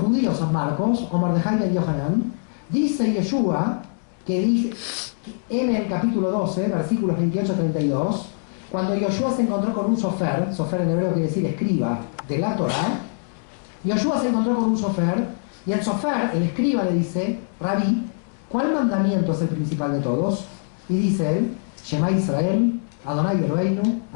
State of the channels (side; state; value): right; silent; digital silence